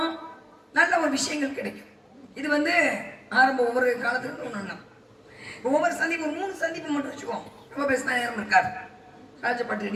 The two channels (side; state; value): both; identical; correlation 1.00